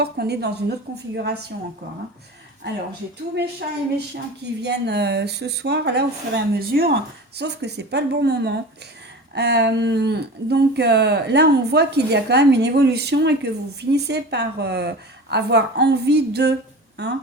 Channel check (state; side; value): normal; both; correlation 0.34